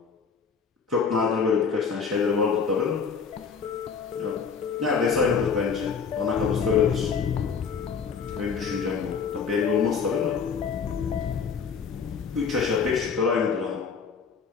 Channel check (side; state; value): right; quieter; 5.8 dB